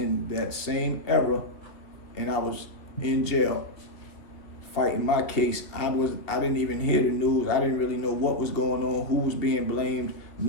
that same era, and I was in jail fighting my case. I didn't even hear the news. I didn't really know what was going on, who was being blamed,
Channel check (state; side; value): late; right; 2.4 ms